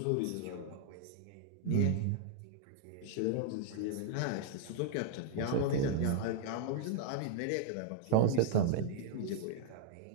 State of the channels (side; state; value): both; different; correlation 0.00